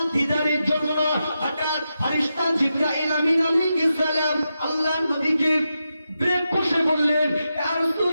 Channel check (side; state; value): both; inverted; correlation -0.88